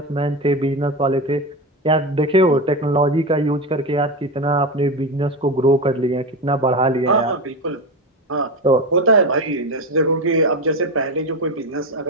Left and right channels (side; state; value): both; normal; correlation 0.19